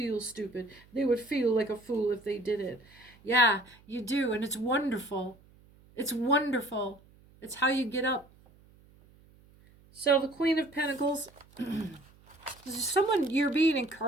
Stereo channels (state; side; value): noise; right; hum, 27 dB below the sound